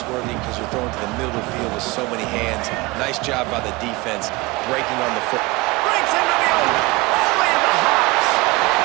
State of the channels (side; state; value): left; quieter; 23.2 dB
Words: because you're throwing to the middle of the field with so many hands. Nice job by the defense breaking on the foot. Breaks into the open, only in the hops.